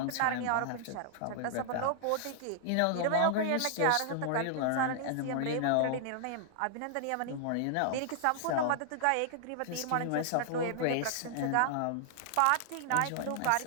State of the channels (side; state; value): both; different; correlation -0.01